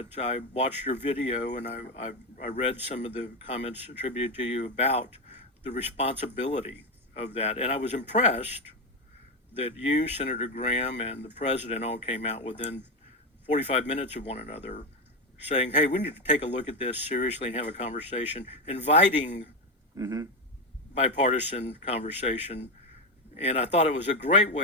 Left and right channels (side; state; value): both; normal; correlation 0.11